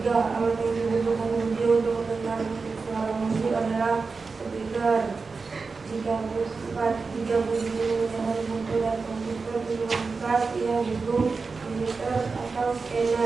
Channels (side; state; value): left; quieter; 4.4 dB